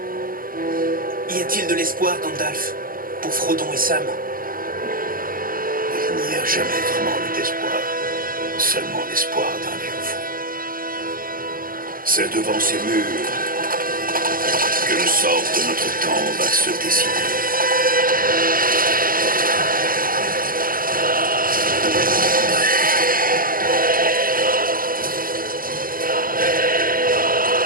Y a-t-il de l'espoir, Gandalf, pour Frodon et Sam? Il n'y a jamais vraiment eu d'espoir, seulement l'espoir d'un vieux fou. C'est devant ces murs que le sort de notre temps va se décider.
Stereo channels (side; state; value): left; late; 0.41 ms